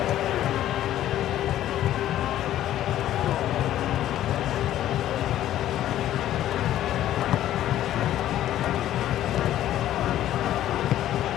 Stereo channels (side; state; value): right; quieter; 12.6 dB